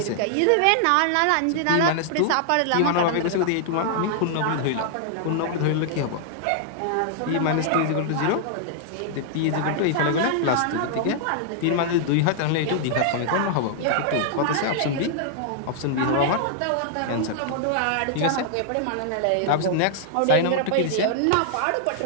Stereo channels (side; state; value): both; different; correlation -0.01